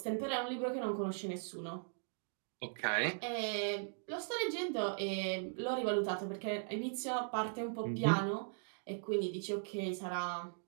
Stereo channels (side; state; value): left; silent; digital silence